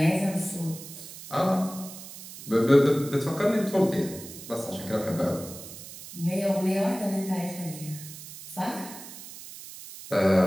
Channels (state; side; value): noise; right; hiss, 14 dB below the sound